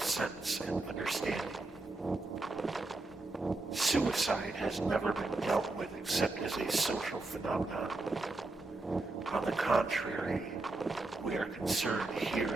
and understanding. Suicide has never been dealt with except as a social phenomenon. On the contrary, we are concerned here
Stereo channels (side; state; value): left; quieter; 3.1 dB